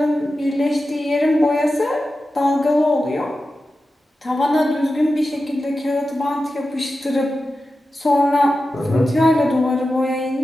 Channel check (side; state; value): both; normal; correlation 0.92